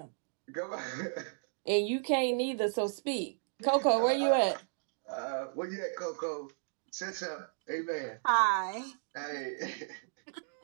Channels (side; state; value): left; silent; digital silence